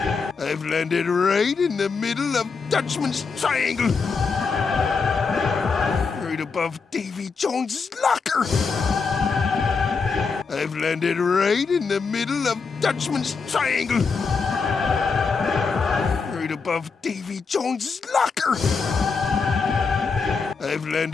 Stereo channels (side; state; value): right; quieter; 5.0 dB